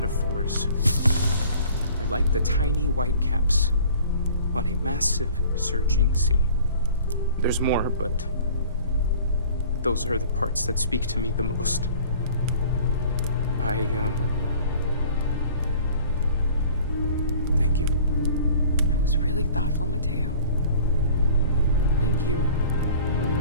are like the tiny white caps on a massive surging sea. There's more, but those are the parts that speak to me the most. Thank you. That was really thoughtful, Mateo. Thank you.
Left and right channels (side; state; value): both; inverted; correlation -0.49